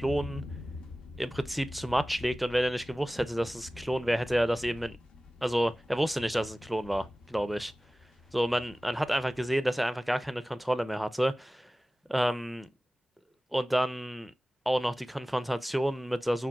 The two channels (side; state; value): both; normal; correlation 0.97